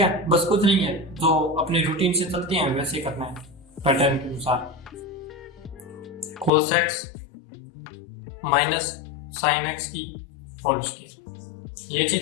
बस कुछ नहीं है, जो अपने रूटीन से चलते हैं वैसे करना है, पैटर्न के अनुसार। cos x minus sin x की होल स्क्वायर, ये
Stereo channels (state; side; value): drops out; right; at 6.5 s